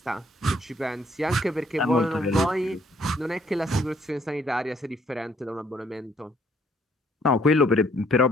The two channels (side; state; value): both; normal; correlation 0.66